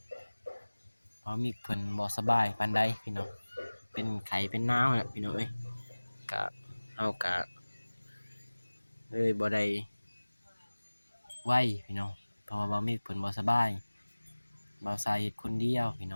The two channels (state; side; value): inverted; both; correlation -1.00